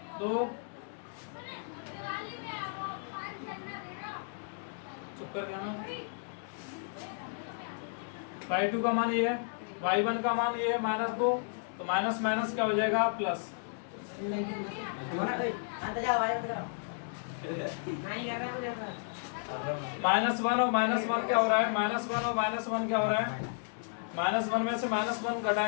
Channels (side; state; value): right; silent; digital silence